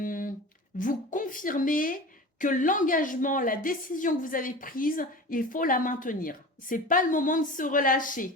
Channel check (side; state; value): both; normal; correlation 0.34